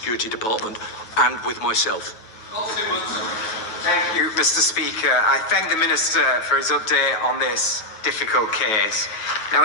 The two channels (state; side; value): late; right; 9.2 ms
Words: Department and with myself. Thank you, Mr. Speaker. I thank the Minister for his update on this difficult case. Now,